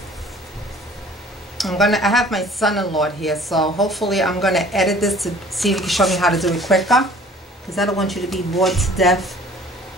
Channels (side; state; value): both; normal; correlation 0.50